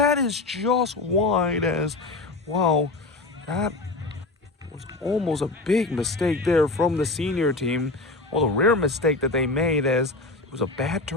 is just wide as, wow, that was almost a big mistake there from the senior team. Well, the rare mistake that they made as it was a bad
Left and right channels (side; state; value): right; quieter; 3.2 dB